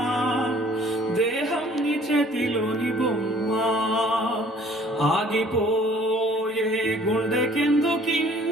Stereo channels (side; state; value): both; normal; correlation 0.55